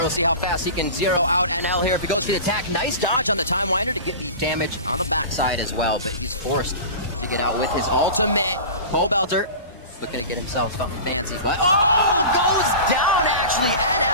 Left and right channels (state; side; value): inverted; both; correlation -0.34